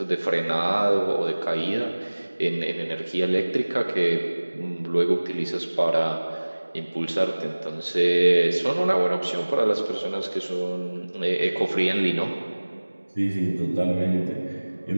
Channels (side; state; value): both; inverted; correlation -1.00